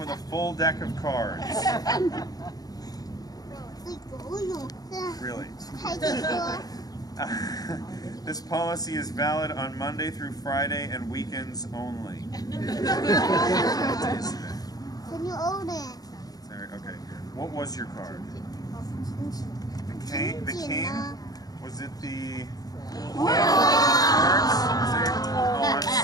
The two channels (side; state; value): right; late; 0.18 ms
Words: a full deck of cards. Really? This policy is valid on Monday through Friday and weekends only. What is it? Can you own it? Sorry, okay. What was your card? The cane? The cane? Was it the... Hearts? Oh, I'm